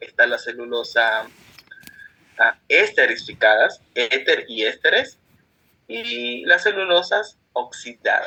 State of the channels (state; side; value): identical; both; correlation 1.00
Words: está la celulosa esterificadas, éter y ésteres, y las celulosas